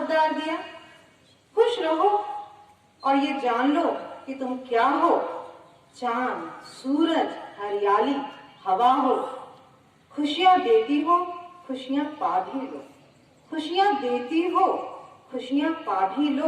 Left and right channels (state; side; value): identical; both; correlation 1.00